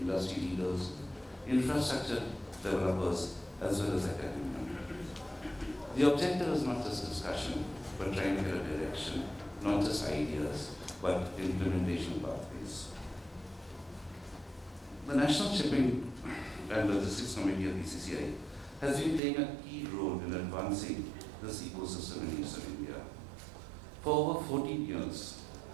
leaders, infrastructure developers, as well as academia. The objective is not just discussion, but trying to get a direction, not just ideas, but implementation pathways. The National Shipping and Logistics Committee of BCC&I has been playing a key role in advancing this ecosystem in Eastern India. For over 14 years,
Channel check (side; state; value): left; drops out; at 19.2 s